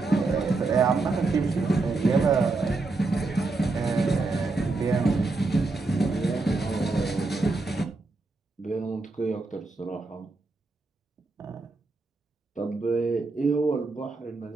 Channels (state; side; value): quieter; left; 3.5 dB